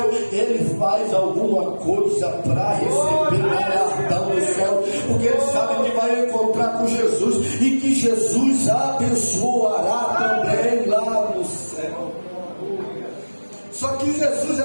ele faz alguma coisa para receber galardão no céu, porque ele sabe que vai encontrar com Jesus e que Jesus abençoará também lá no céu. Só que Jesus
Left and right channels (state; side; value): inverted; both; correlation -1.00